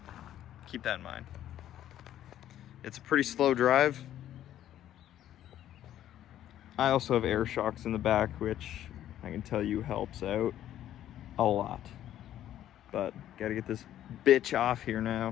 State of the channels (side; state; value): right; quieter; 11.9 dB